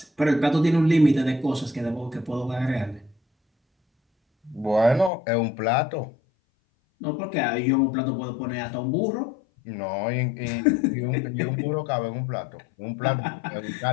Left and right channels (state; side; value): drops out; right; at 5.1 s